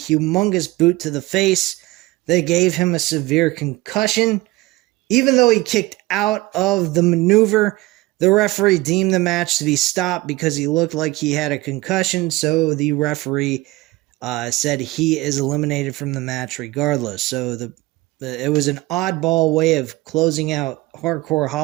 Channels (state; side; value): quieter; left; 19.9 dB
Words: boot to the face that gave him a severe concussion. Even though he kicked out of the maneuver, the referee deemed the match to be stopped because he looked like he had a concussion, so the referee said he is eliminated from the match regardless. So it was an oddball way of closing out Hardcore